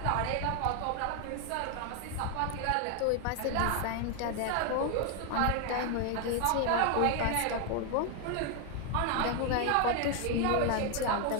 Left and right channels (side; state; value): both; different; correlation 0.01